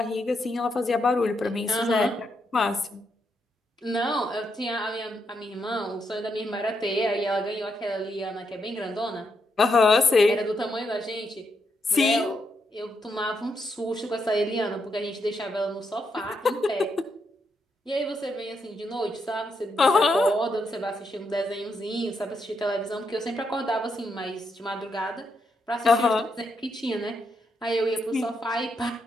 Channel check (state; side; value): normal; both; correlation 0.80